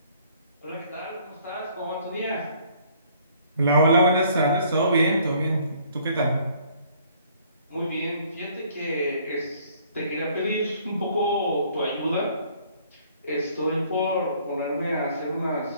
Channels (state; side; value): inverted; both; correlation -0.60